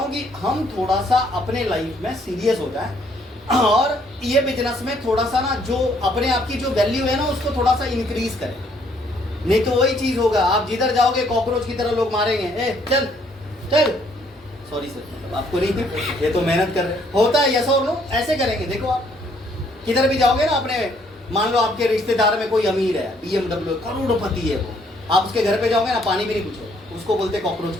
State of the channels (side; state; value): both; normal; correlation 0.66